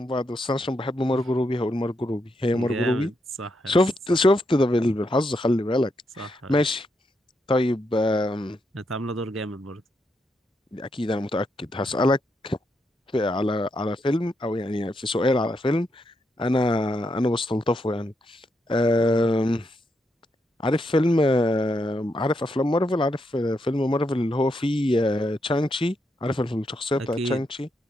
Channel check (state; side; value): normal; both; correlation 0.81